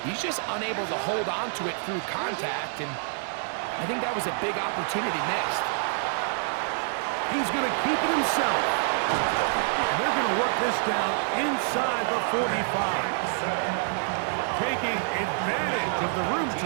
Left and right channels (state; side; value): silent; left; digital silence